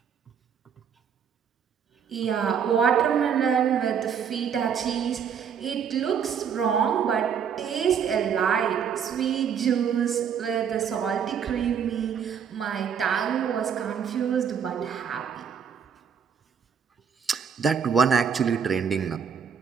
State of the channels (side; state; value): left; quieter; 7.5 dB